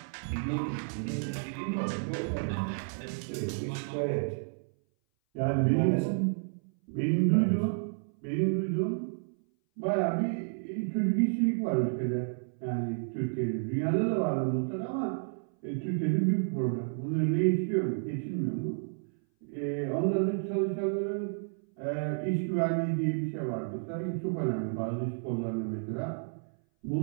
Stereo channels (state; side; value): silent; left; 57 dB below the other